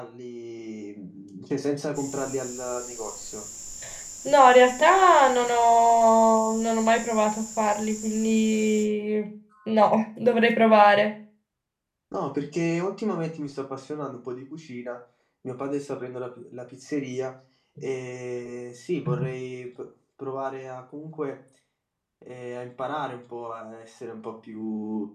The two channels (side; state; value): both; identical; correlation 1.00